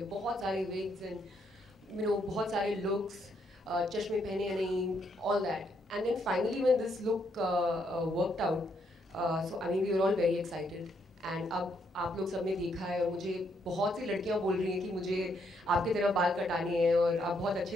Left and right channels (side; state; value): both; normal; correlation 0.74